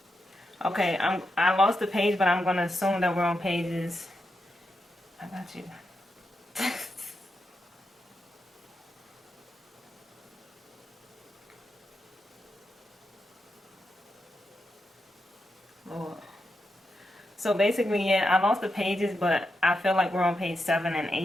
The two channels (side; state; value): both; normal; correlation 0.86